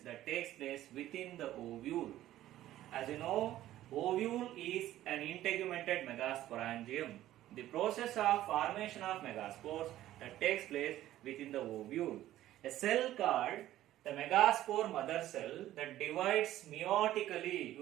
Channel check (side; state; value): left; quieter; 13.9 dB